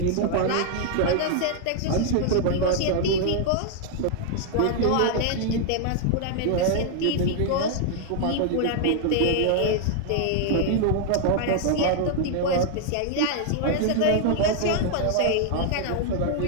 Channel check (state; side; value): different; both; correlation 0.00